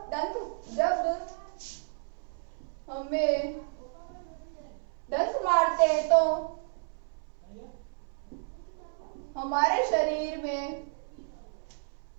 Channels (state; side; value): silent; left; 57 dB below the other